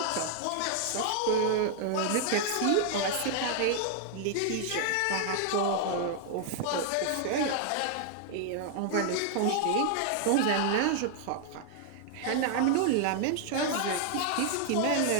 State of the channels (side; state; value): both; different; correlation 0.00